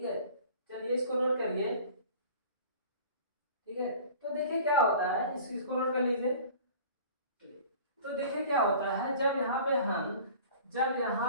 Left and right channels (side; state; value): both; inverted; correlation -0.44